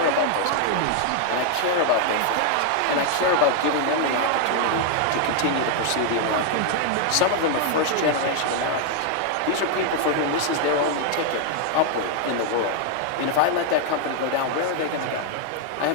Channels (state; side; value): different; both; correlation 0.00